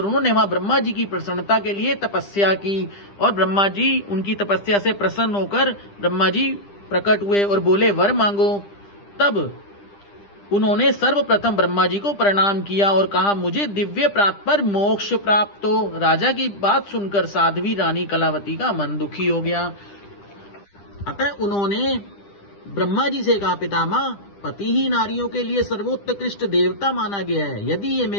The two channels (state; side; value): late; right; 10 ms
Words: उन्होंने वहां ब्रह्मा जी की प्रसन्नता के लिए तपस्या की। और ब्रह्मा जी उनकी तपस्या से प्रसन्न होकर ब्रह्मा जी प्रकट हुए और बोले, वर मांगो। तब उन्होंने सर्वप्रथम ब्रह्मा जी को प्रणाम किया और कहा, मुझे दिव्य प्राप्त पर मोक्ष प्राप्त हो। राजा की बात सुनकर साध्वी रानी कलावती का मन दुखी हो गया। अतः उन्होंने ब्रह्मा जी से कहा, पितामह, पति ही नारियों के लिए सर्वोत्कृष्ट देवता माना गया है। यदि ये